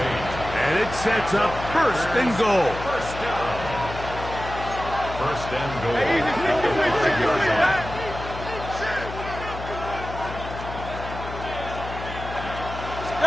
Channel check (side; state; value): left; noise; hum, 10 dB below the sound